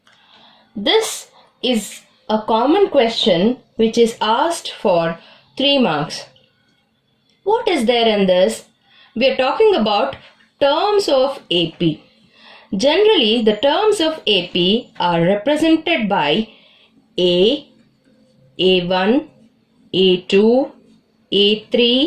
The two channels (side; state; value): both; identical; correlation 1.00